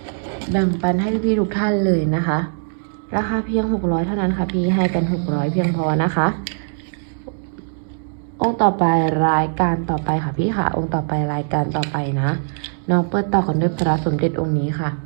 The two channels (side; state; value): left; silent; digital silence